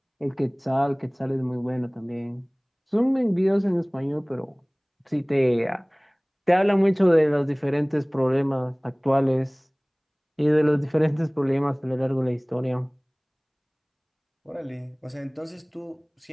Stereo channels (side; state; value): both; identical; correlation 1.00